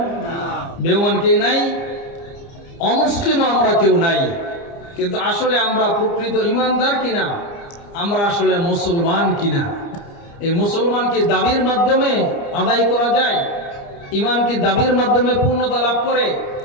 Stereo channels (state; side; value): late; right; 30 ms